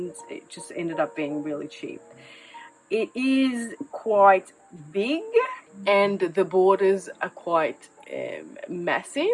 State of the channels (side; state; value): both; identical; correlation 1.00